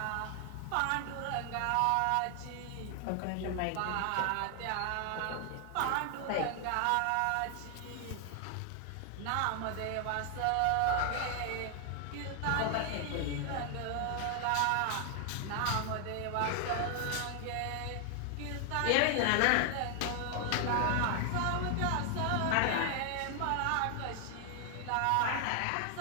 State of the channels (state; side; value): different; both; correlation 0.00